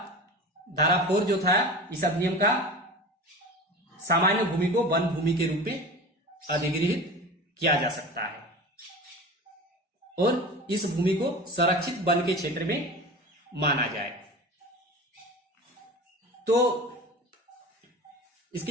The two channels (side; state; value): both; normal; correlation 0.33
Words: धारा 4 जो था इस अधिनियम का, सामान्य भूमि को वन भूमि के रूप में अधिग्रहित किया जा सकता है और इस भूमि को संरक्षित वन के क्षेत्र में माना जाए। तो